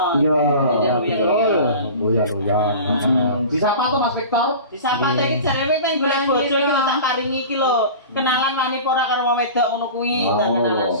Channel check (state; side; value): inverted; both; correlation -0.36